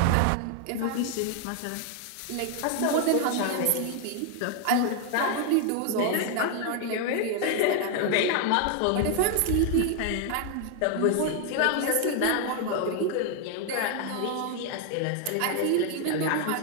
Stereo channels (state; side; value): different; both; correlation 0.00